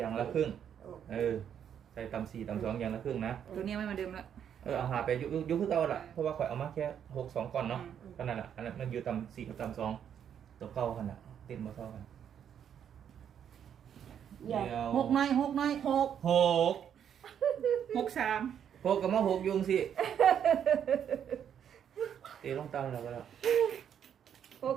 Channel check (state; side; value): quieter; left; 8.8 dB